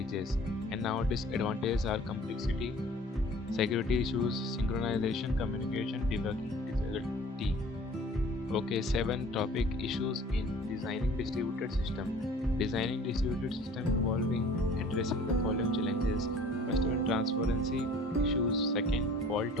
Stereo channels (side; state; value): both; normal; correlation 0.49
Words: And now disadvantages are complexity, security issues, synchronization, communication, debugging difficulty. Okay, 7 topic, issues in designing distributed system. Designing distributed system involving addressing the following challenges: first one, transparency issues, second, fault